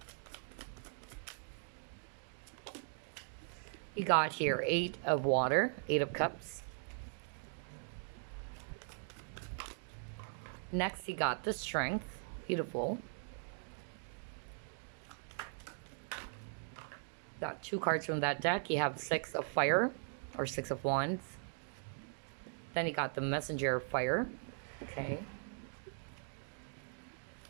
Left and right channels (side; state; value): left; silent; digital silence